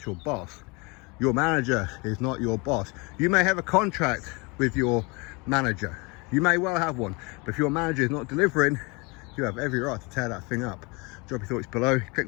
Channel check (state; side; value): quieter; right; 28.1 dB